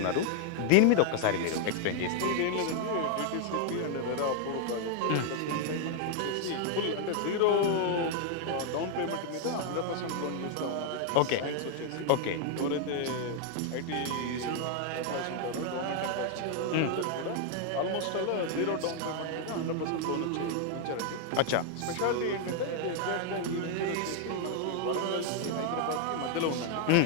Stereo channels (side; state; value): both; different; correlation 0.00